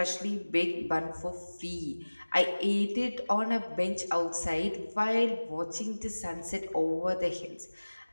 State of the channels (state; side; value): inverted; both; correlation -1.00